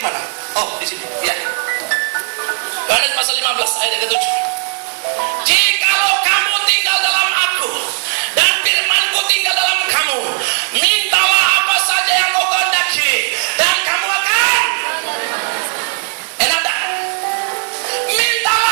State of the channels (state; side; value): silent; left; 64 dB below the other